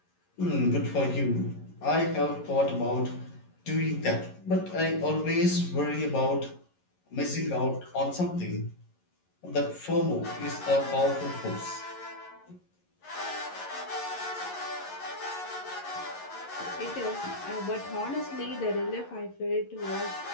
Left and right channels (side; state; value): right; late; 11 ms